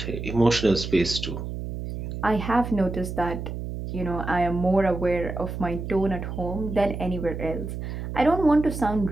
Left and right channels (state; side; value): noise; right; hum, 6 dB below the sound